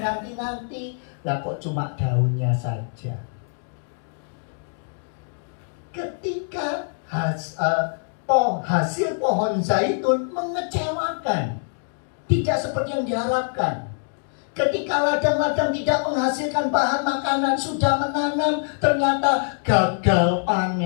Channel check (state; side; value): silent; right; 63 dB below the other